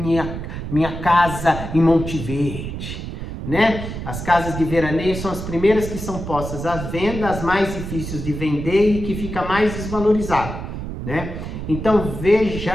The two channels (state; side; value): noise; right; rumble, 7 dB below the sound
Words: minha casa em Monte Verde? Né? As casas de veraneio são as primeiras que são postas à venda, as mais difíceis de vender e que fica mais desvalorizado, né? Então